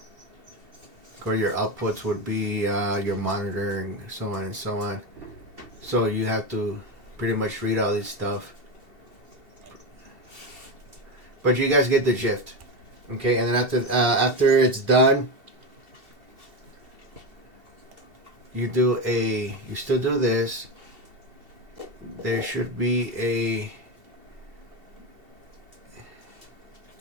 Or your outputs would be your monitor and so on and so on. So you have to pretty much read all this stuff. But you guys get the gist. Okay, and then after it's done, you still do this. There should be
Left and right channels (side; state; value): left; late; 2.7 ms